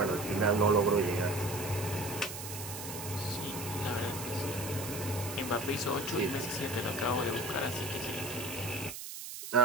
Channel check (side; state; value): right; noise; hiss, 9 dB below the sound